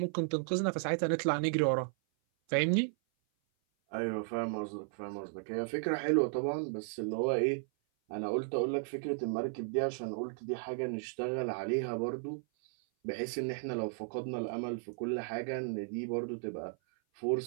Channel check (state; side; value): silent; left; 55 dB below the other